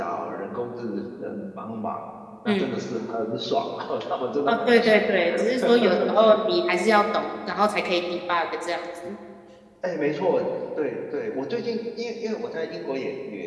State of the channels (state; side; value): identical; both; correlation 1.00